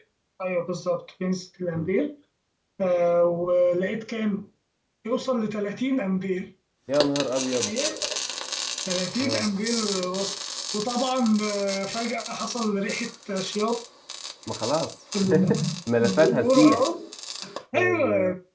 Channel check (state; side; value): identical; both; correlation 1.00